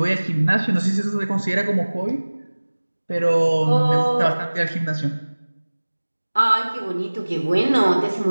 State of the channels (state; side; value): inverted; both; correlation -1.00